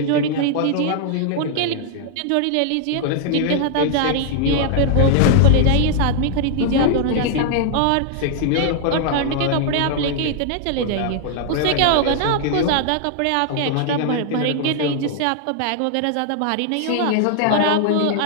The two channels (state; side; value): different; both; correlation 0.00